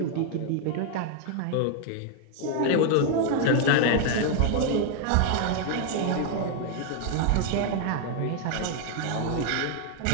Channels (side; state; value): both; different; correlation 0.00